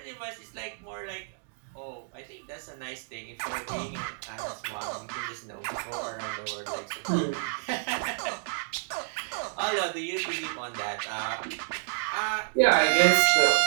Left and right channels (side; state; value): left; silent; digital silence